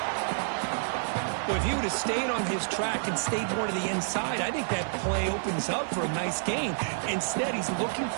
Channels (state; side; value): silent; left; digital silence